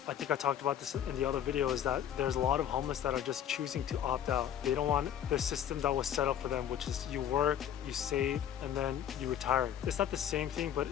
I think I talked about this in the other video, is that there's a lot of homeless that are just choosing to opt out. They don't want the system that was set up for them, which is you work, you save, and then you retire. It's not the same thing, but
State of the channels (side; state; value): right; quieter; 9.9 dB